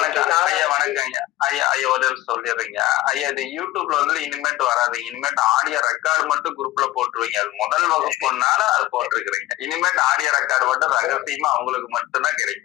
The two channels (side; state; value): right; quieter; 16.0 dB